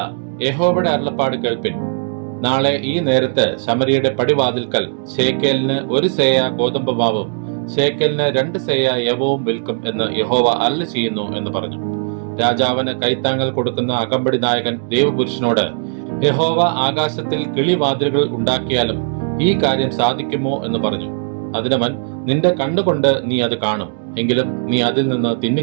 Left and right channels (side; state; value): left; silent; digital silence